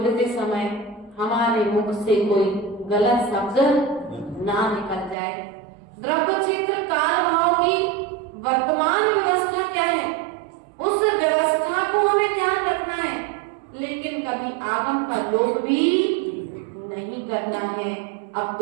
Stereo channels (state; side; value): drops out; left; at 5.2 s